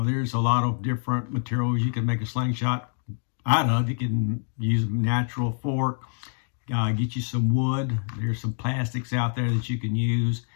there's a lot of different materials you can make a slingshot out of. You can use a natural fork, get you some wood. There's some plastics out there that you can use.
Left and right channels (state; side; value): silent; right; 61 dB below the other